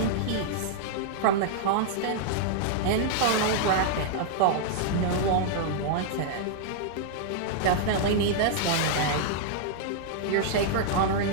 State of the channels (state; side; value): different; both; correlation -0.01